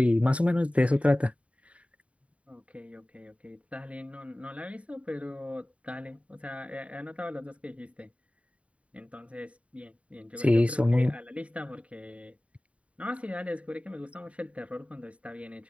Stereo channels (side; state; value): left; late; 0.064 ms